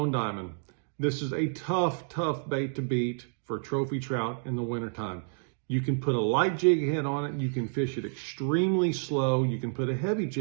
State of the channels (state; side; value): silent; left; digital silence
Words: Diamond. This is a tough bait to beat for trophy trout in the wintertime. You can put a light jig head on it, you can fish it extremely slow, you can put a heavy